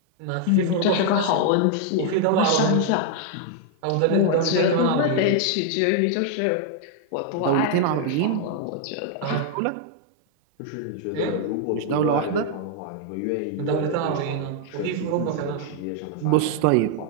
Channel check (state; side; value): different; both; correlation 0.00